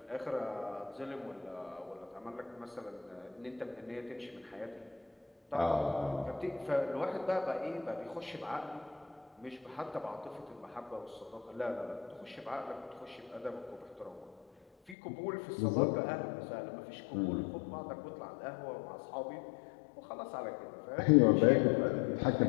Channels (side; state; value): right; drops out; at 15.0 s